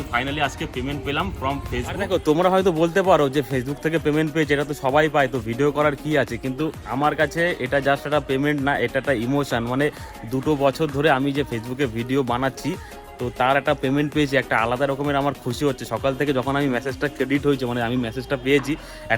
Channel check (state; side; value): identical; both; correlation 1.00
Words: ফাইনালি আজকে পেমেন্ট পেলাম ফ্রম ফেসবুক। দেখো তোমরা হয়তো বলতে পারো যে ফেসবুক থেকে পেমেন্ট পেয়েছে, এটা তো সবাই পায়, তো ভিডিও করার কি আছে, কিন্তু আমার কাছে এটা জাস্ট একটা পেমেন্ট না, এটা একটা ইমোশন। মানে 2 বছর ধরে আমি যে ফেসবুকে ভিডিও বানাচ্ছি, তো তার একটা পেমেন্ট পেয়েছি, একটা আলাদা রকমের আমার খুশি হচ্ছে। সকাল থেকে যখন আমি মেসেজটা ক্রেডিট হয়েছে, মানে আমি মেসেজটা পেয়েছি,